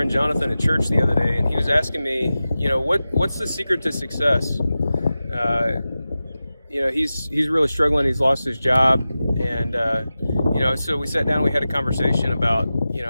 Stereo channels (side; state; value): both; inverted; correlation -0.94